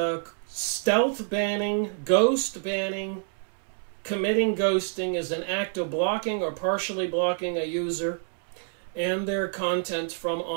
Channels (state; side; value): silent; left; 59 dB below the other